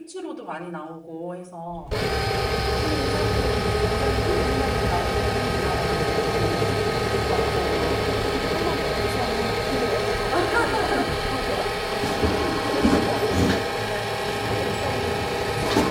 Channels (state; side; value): identical; both; correlation 1.00